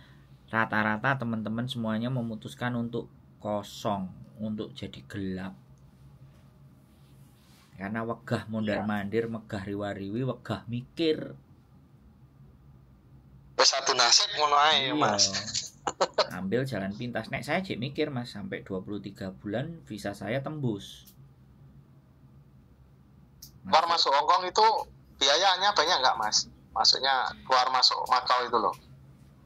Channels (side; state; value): both; identical; correlation 1.00